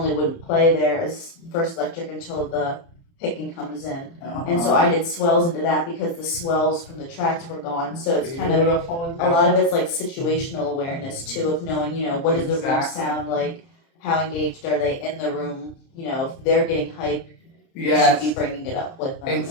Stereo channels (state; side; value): late; right; 30 ms